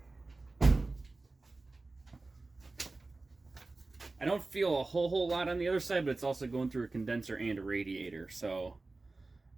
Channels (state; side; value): quieter; left; 3.4 dB